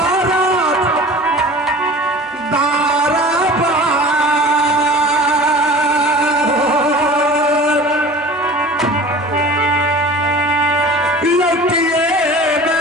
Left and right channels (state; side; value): normal; both; correlation 0.40